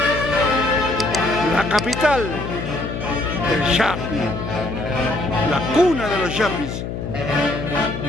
la capital del Chapi, la cuna de los Chapis.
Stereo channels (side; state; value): left; noise; hum, 6 dB below the sound